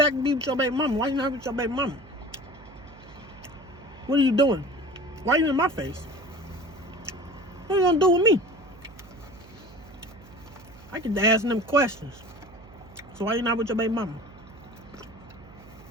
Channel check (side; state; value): right; noise; hum, 21 dB below the sound